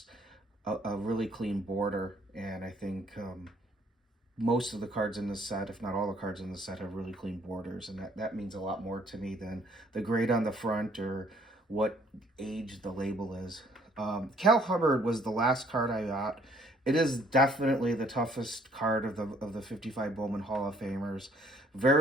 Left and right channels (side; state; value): both; normal; correlation 0.62